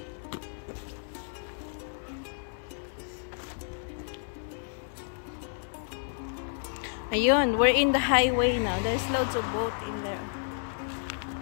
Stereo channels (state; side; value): silent; right; 57 dB below the other